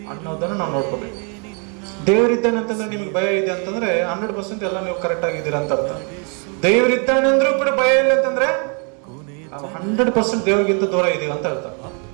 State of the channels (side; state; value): left; quieter; 37.8 dB